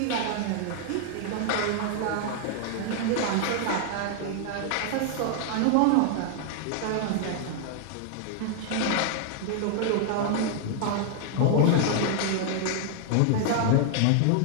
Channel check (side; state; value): both; different; correlation 0.00